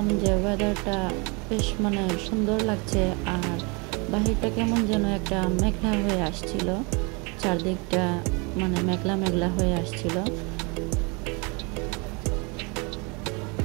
যে ওয়েদারটা বেশ সুন্দর লাগছে, আর বাহিরটা কেমন যেন একটা মেঘলা হয়ে আসছিল, চারদিকটা মেঘলা মেঘলা হয়ে আসছিল।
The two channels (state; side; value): quieter; left; 30.1 dB